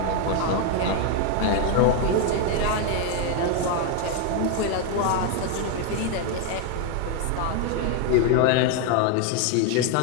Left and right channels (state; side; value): different; both; correlation 0.01